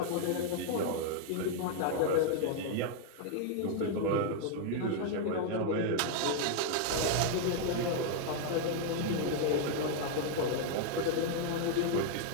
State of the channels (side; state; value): both; different; correlation 0.00